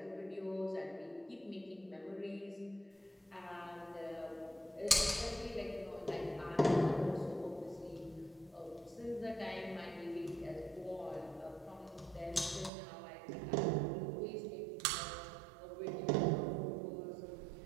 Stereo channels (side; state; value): left; drops out; at 12.7 s